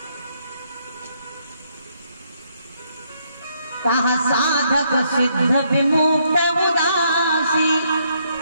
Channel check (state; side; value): inverted; both; correlation -0.73